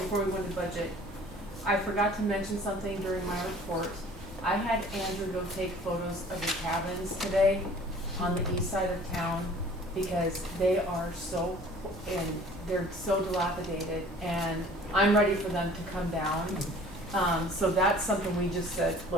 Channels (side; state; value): both; normal; correlation 0.49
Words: before we go into budget. I forgot to mention something during my report. I had Andrew go take photos of the cabins today on the east side of town because they are so, and they're so dilapidated, and I'm ready for them to come down. So that's something we just said,